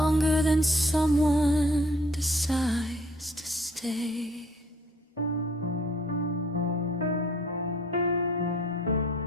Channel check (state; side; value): normal; both; correlation 0.58